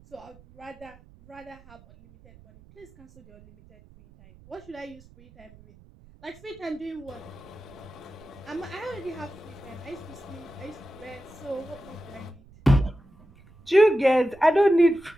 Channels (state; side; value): noise; right; rumble, 24 dB below the sound